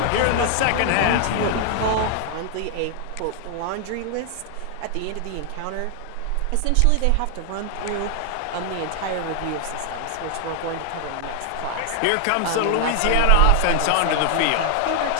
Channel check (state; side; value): different; both; correlation 0.00